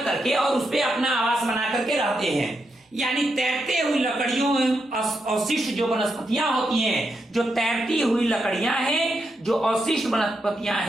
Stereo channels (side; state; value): both; normal; correlation 0.83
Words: करके और उस पर अपना आवास बना करके रहते हैं। यानी तैरते हुई लकड़ियों, अवशिष्ट जो वनस्पतियां होती हैं, जो तैरती हुई लकड़ियां हैं, जो अवशिष्ट वनस्पतियां